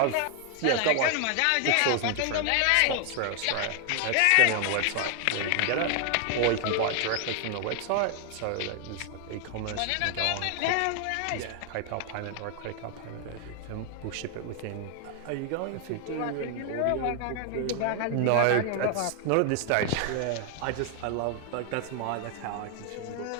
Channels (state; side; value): different; both; correlation 0.00